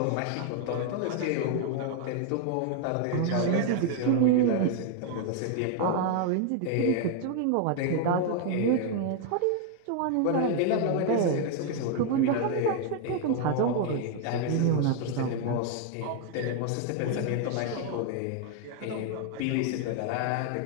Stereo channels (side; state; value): both; different; correlation 0.00